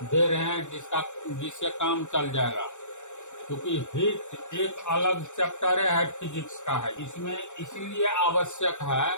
रहे हैं जिससे काम चल जाएगा। क्योंकि हीट एक अलग चैप्टर है, फिजिक्स का है, इसमें इसलिए आवश्यक है।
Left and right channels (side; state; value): right; late; 0.84 ms